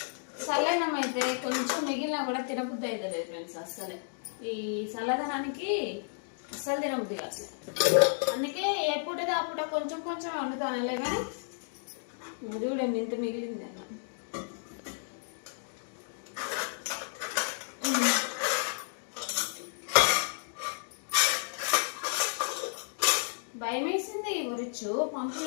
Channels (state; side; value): silent; right; digital silence